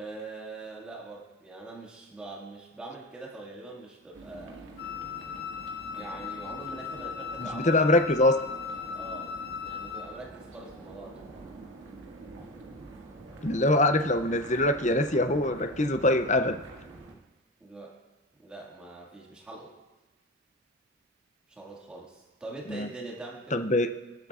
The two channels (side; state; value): both; normal; correlation 0.26